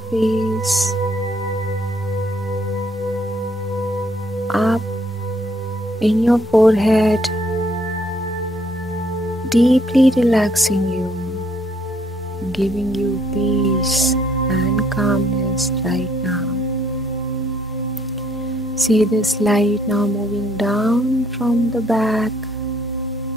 face, up in your forehead, deeply relaxing you, giving you peace and calmness right now. See this light now moving down from the back,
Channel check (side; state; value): both; normal; correlation 0.67